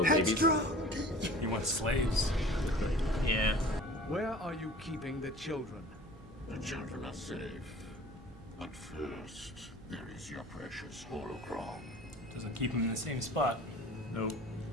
babies. He wants slaves. Yeah. Where are you keeping the children? The children are safe. But first, there is your precious holocron. Doesn't keep him in the same spot. Nope.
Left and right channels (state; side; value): normal; both; correlation 0.44